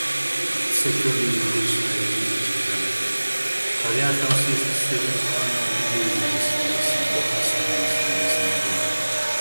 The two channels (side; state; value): both; inverted; correlation -1.00